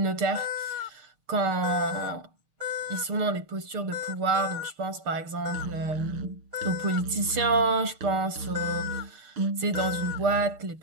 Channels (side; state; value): left; late; 6.7 ms